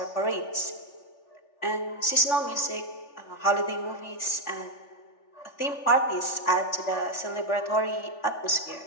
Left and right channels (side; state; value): right; late; 3.4 ms